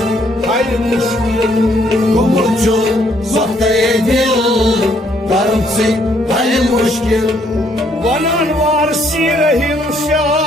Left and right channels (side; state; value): both; normal; correlation 0.68